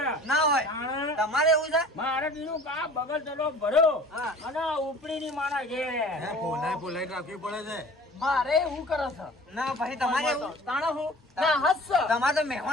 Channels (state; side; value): normal; both; correlation 0.46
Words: ના હોય. તાણે તમારે એવું છે? મારે દીનું કા બગલ ચલો ભર્યો હા. અને ઉપડી ની મારા ઘેર બોલાઈ રાખવી પડે છે. મારે એવું કરે છે ના ભાઈ તમારે એવું? તાણે હું ના હસ તમારે તો